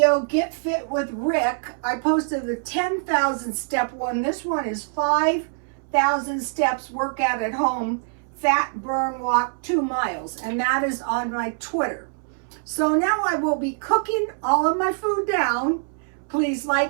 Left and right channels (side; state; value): left; silent; 63 dB below the other